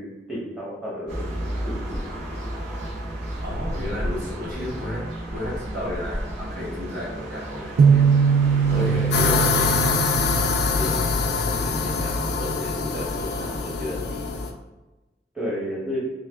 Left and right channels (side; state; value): both; normal; correlation 0.48